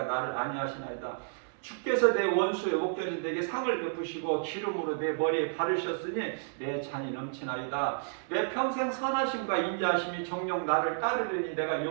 나를 안위하시나이다. 주께서 내 원수의 목전에서 내게 상을 베푸시고 기름으로 내 머리에 바르셨으니 내 잔이 넘치나이다. 내 평생 선하심과 인자하심이 정녕 나를 따르리니 내가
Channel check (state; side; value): silent; left; 57 dB below the other